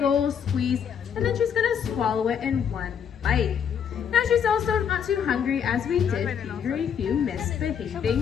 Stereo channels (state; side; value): quieter; right; 7.9 dB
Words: old squeeze, and then she's gonna swallow it in one bite. Now she's also not too hungry, as we did feed her a few